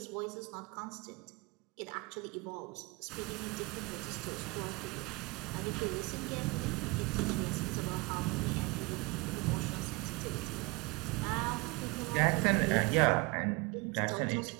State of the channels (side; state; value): left; quieter; 26.3 dB